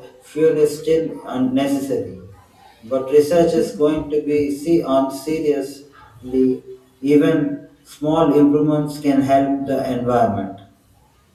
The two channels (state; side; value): identical; both; correlation 1.00